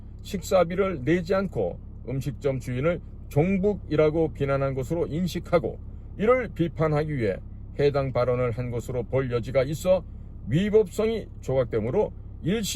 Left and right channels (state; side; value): identical; both; correlation 1.00